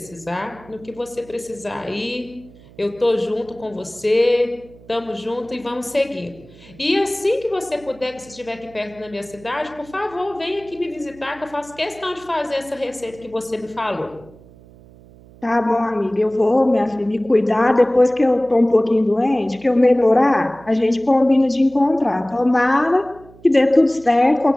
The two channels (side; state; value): right; noise; hum, 23 dB below the sound